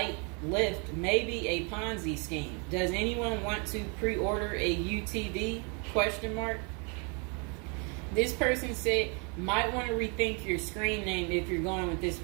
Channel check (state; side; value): quieter; left; 34.8 dB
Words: lift, maybe a Ponzi scheme. Does anyone want to pre-order a UTV? Question mark. This person said, might want to rethink your screen name if you're going with this